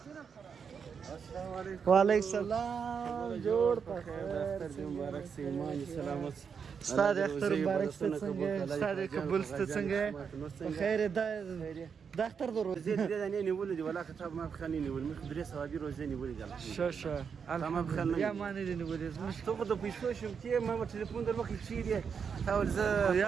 वालेकुम सलाम, जोड़ मुबारक से ईमान सलामत Ustad Akhtar Mubarak Stetsenge, Ustad Kabul Stetsenge, بخير دختر درو. زيد أنا نقول ولا كتاب ما بخليني نقول مدرسة صوابي روزاني نقول قال. شو الحمد لله يا ما ندري نقول مش تقدر بيسوي شو كي ما بتليفون در وقت شيء تاول ز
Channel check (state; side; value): quieter; left; 6.5 dB